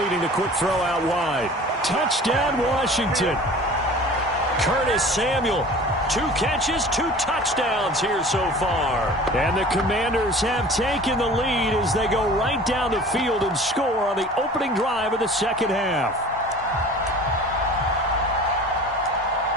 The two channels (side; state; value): both; normal; correlation 0.43